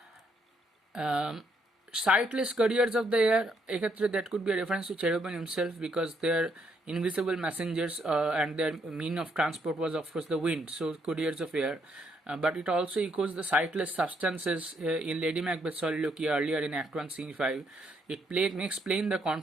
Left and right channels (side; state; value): both; normal; correlation 0.73